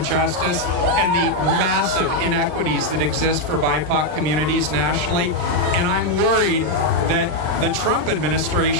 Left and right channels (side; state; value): left; late; 39 ms